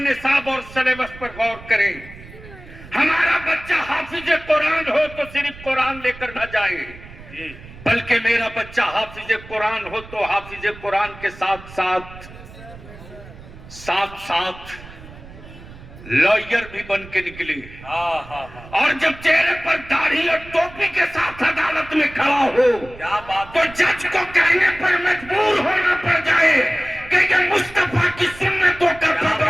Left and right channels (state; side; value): noise; right; rumble, 17 dB below the sound